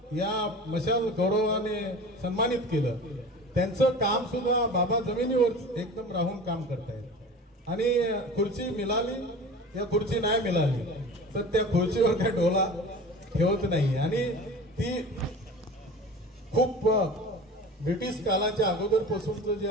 या मशाल गौरवाने सन्मानित केलं. त्यांचं काम सुद्धा बाबा जमिनीवर एकदम राहून काम करतायत. आणि खुर्ची मिळाली, या खुर्ची नाही मिळाली तर त्या खुर्चीवर काय डोला ठेवत नाही. आणि ती खूप ब्रिटिश कालाच्या अगोदरपासूनच जे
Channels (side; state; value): both; normal; correlation 0.37